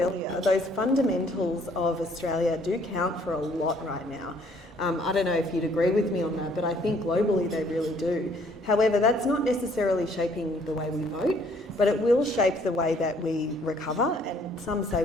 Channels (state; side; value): normal; both; correlation 0.62